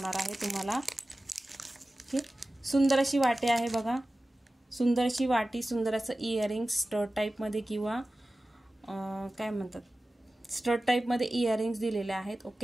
आहे तुम्हाला. ओके सुंदर अशी वाटी आहे बघा. सुंदर अशी वाटी, सुंदर असं इयरिंग्स स्टड टाईपमध्ये किंवा काय म्हणतात स्टड टाईपमध्ये इयरिंग्स दिलेले आहेत.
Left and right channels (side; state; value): both; normal; correlation 0.96